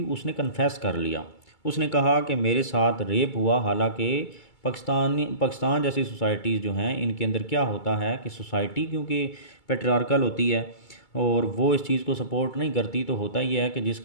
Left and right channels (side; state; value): right; late; 2.3 ms